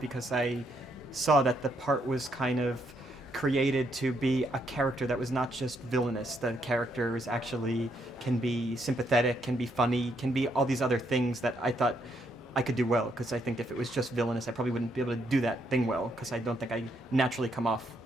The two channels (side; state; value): both; normal; correlation 0.75